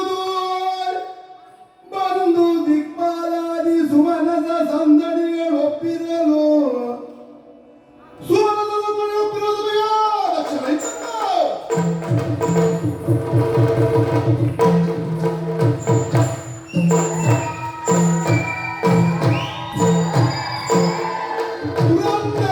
ಬಂದು ದಿಕ್ಪಾಲಾದಿ ಸುಮನದ ಸಂದಣಿಗಳು ಒಪ್ಪಿರಲು ಸುಮನದ ಸಂದಣಿ ಒಪ್ಪಿರೋದು ದಕ್ಷಿಣ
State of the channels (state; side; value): identical; both; correlation 1.00